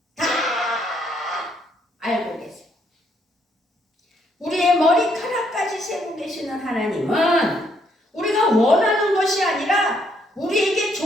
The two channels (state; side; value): normal; both; correlation 0.71